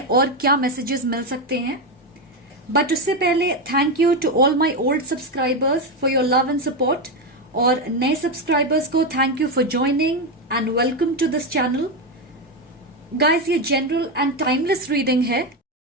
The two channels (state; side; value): normal; both; correlation 0.10